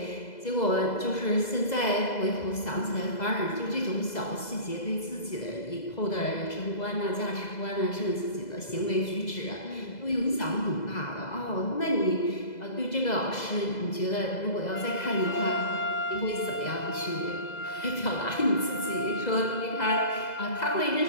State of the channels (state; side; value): late; right; 2.0 ms